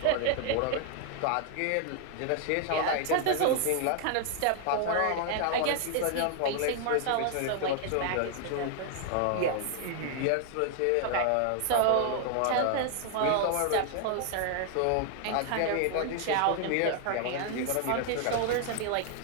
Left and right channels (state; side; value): different; both; correlation 0.00